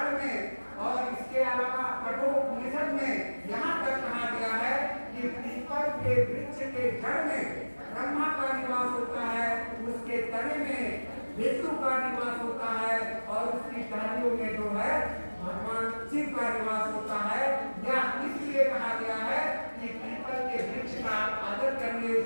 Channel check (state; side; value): inverted; both; correlation -1.00